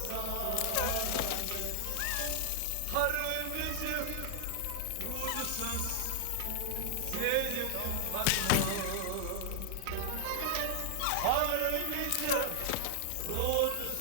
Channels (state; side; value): different; both; correlation 0.00